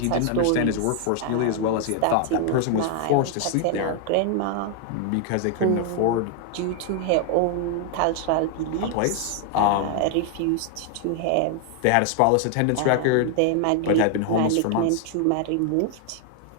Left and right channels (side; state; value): both; different; correlation 0.00